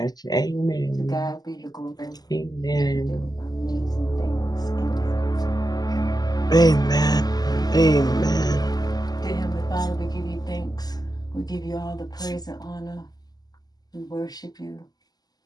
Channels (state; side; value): late; right; 0.19 ms